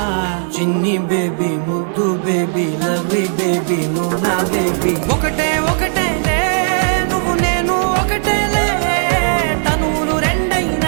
చిన్ని బేబీ ముద్దు బేబీ లవ్లీ బేబీ నువ్వు నా బేబీ ఒకటే ఒకటేలే నువ్వు నేను ఒకటేలే తనువులు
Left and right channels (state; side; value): silent; left; 62 dB below the other